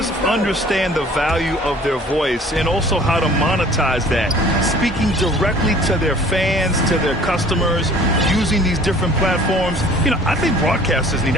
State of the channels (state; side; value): normal; both; correlation 0.51